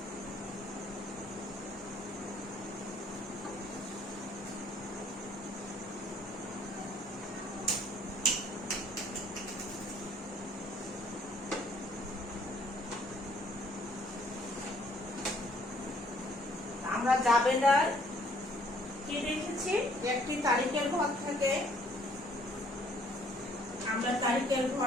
আমরা জাবেদার কি দেখেছি? একটি তারিখের ঘর থাকে, আমরা তারিখের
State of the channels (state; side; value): normal; both; correlation 0.62